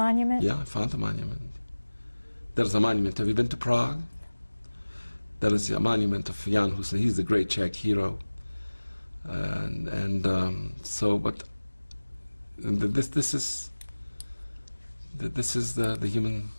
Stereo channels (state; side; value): inverted; both; correlation -1.00